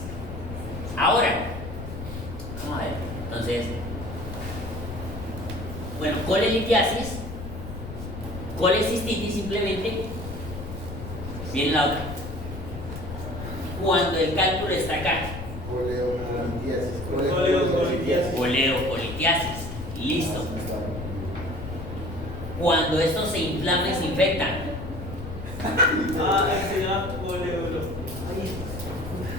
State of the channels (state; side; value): noise; left; rumble, 9 dB below the sound